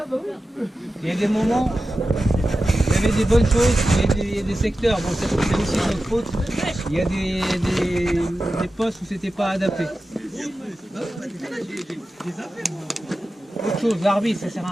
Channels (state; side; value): normal; both; correlation 0.93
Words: Il y a des moments, il y avait des bonnes choses, il y a des secteurs, bon c'est aussi notre faute, il y a des postes où c'était pas adapté. Autre chose, l'arbitre, ça sert